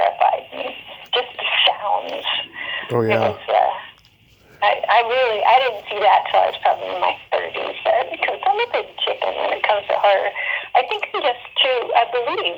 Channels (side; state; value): both; identical; correlation 1.00